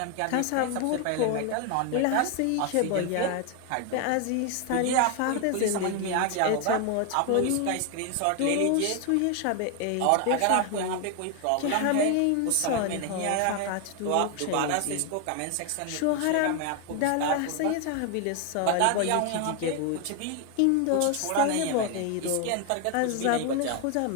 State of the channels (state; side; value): different; both; correlation 0.01